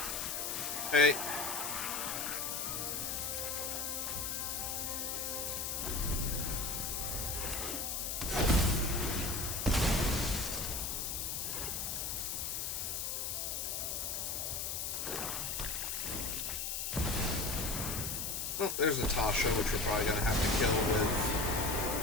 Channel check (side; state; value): left; noise; hiss, 2 dB below the sound